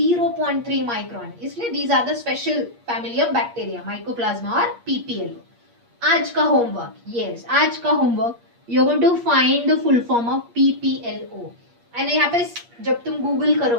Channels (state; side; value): late; left; 8.5 ms